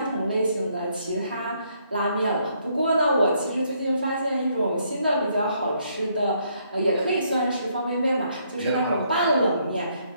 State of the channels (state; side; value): inverted; both; correlation -0.71